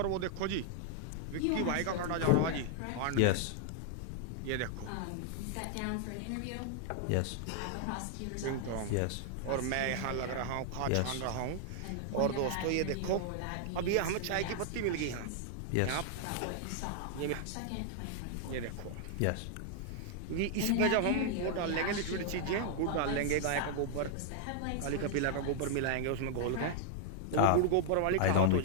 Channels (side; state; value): both; different; correlation 0.00